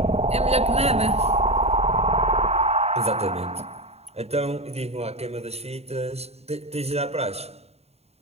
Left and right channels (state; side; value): late; left; 0.30 ms